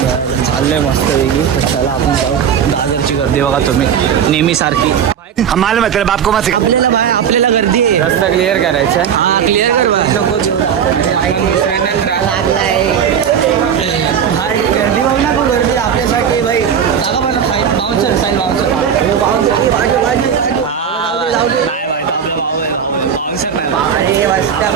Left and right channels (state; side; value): quieter; left; 8.0 dB